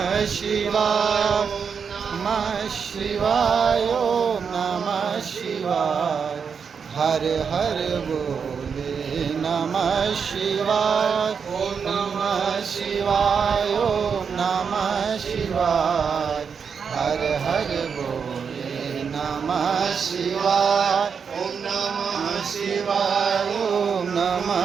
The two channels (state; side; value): quieter; left; 6.3 dB